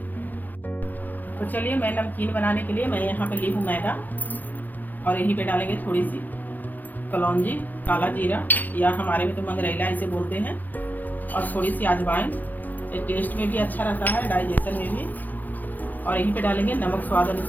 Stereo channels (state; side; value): late; right; 0.084 ms